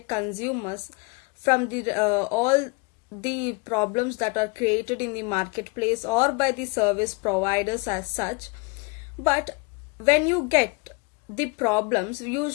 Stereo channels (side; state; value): right; quieter; 28.7 dB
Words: consumers from all the problems that are created in the marketplace or by the service providers as such. But when you get the problems, you